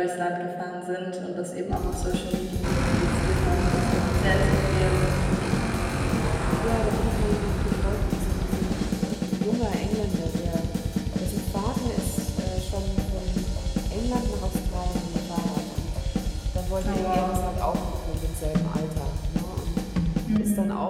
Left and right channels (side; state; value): both; identical; correlation 1.00